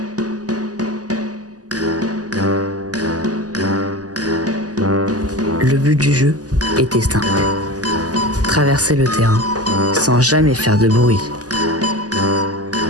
Le but du jeu était simple. Traverser le terrain sans jamais faire de bruit.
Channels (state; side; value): late; left; 0.67 ms